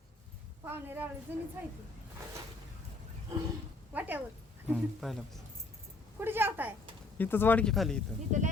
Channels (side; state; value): right; quieter; 3.2 dB